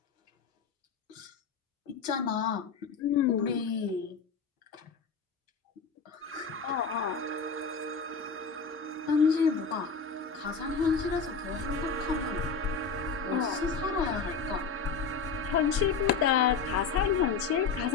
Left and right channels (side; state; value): right; quieter; 5.3 dB